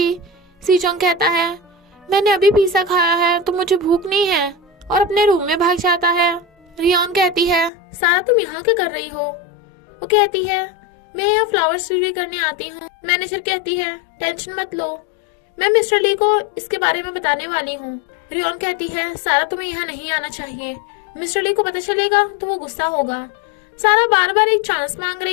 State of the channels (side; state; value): right; drops out; at 7.7 s